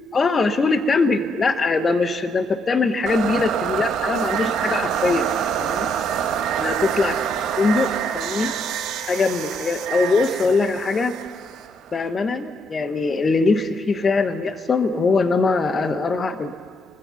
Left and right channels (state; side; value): normal; both; correlation 0.75